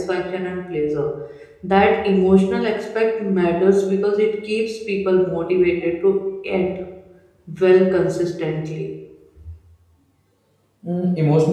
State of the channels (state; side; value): identical; both; correlation 1.00